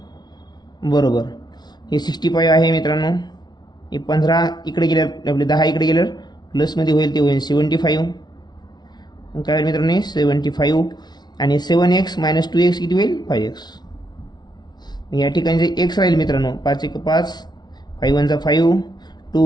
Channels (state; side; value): late; right; 0.20 ms